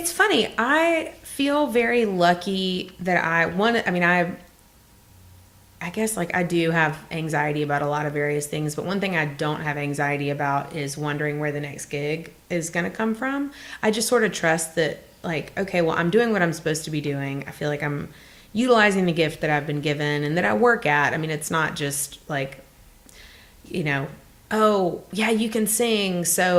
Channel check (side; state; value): both; identical; correlation 1.00